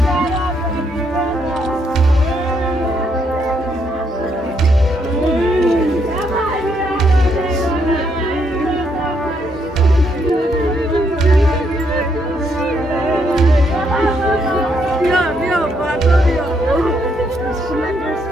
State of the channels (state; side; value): normal; both; correlation 0.74